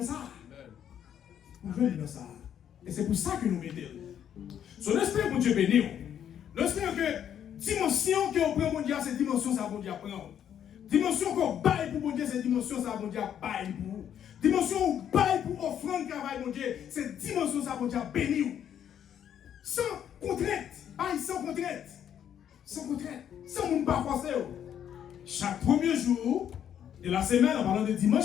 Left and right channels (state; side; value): quieter; right; 9.5 dB